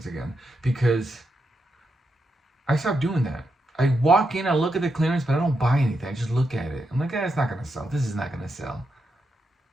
again because I stopped doing that. I walk in, I look at the clearance, but I don't buy anything. I just look at it. I'm like, it's not gonna sell. This is not gonna sell.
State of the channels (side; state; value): both; normal; correlation 0.84